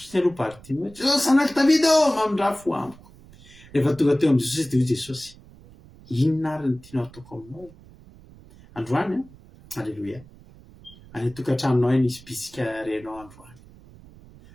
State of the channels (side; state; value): right; noise; rumble, 22 dB below the sound